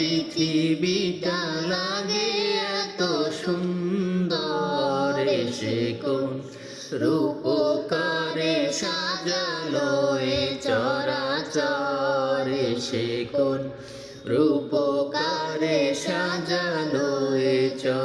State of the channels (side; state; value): both; identical; correlation 1.00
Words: লাগে এত সুন্দর, এসে কোন রূপকারে সাজালো এ চরাচর, এসে কোন রূপকারে সাজালো এ